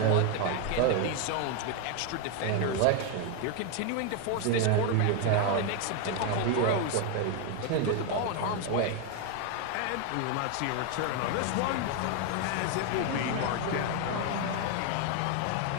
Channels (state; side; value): different; both; correlation 0.01